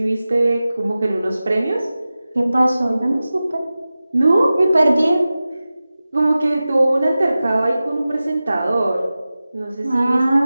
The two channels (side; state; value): both; inverted; correlation -0.95